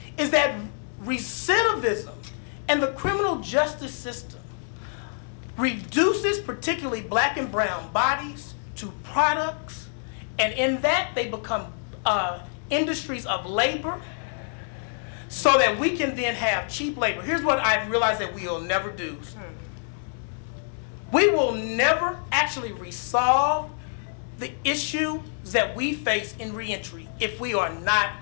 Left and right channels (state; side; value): silent; right; 61 dB below the other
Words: is that recidivism and the criminal justice system reduces particularly black and brown bodies to products, and in that they become industries of labor, so that we can then have cheap labor. Here's what I've realized that we will never do. We will never actually resolve the issue that we face in reentry if we are not